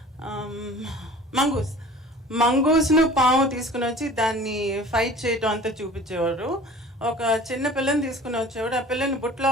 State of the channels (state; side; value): normal; both; correlation 0.44